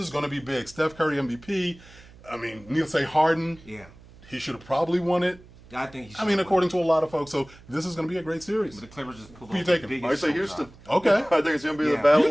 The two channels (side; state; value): right; noise; hum, 23 dB below the sound